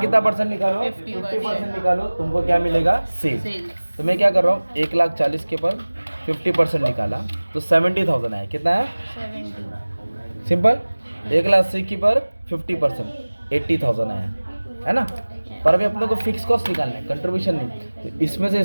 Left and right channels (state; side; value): inverted; both; correlation -1.00